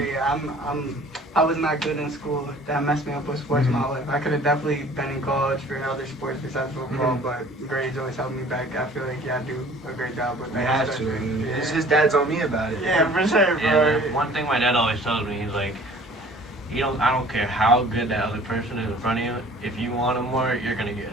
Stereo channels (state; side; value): normal; both; correlation 0.50